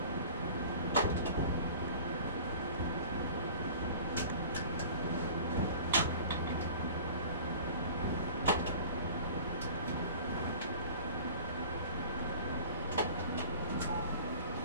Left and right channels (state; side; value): inverted; both; correlation -0.43